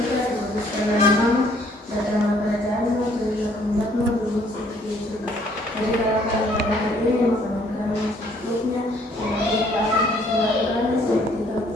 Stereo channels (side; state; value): both; normal; correlation 0.62